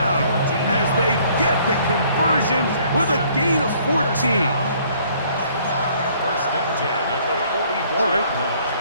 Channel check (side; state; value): both; inverted; correlation -0.60